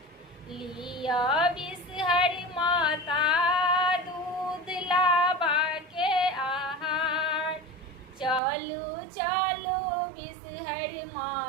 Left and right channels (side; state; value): left; drops out; at 8.4 s